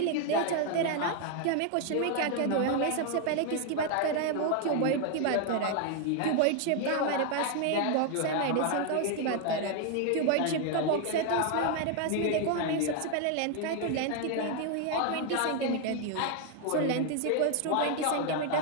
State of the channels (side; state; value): both; different; correlation 0.00